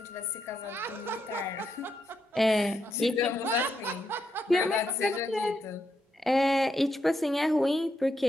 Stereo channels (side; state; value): both; normal; correlation 0.81